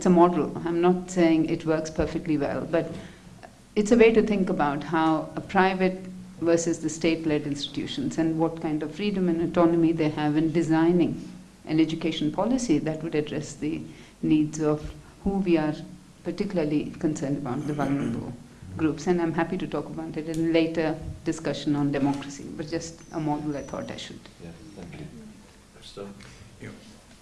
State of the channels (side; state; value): both; identical; correlation 1.00